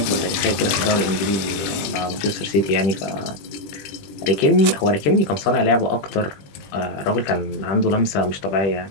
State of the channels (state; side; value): late; right; 21 ms